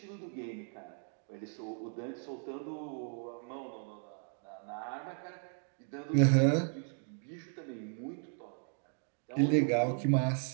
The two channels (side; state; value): left; silent; 54 dB below the other